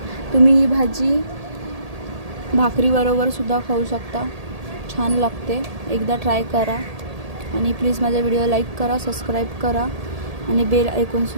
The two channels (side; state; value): left; late; 1.8 ms